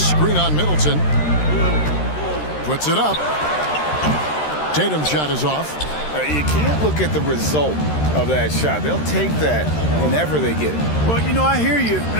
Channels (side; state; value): right; late; 13 ms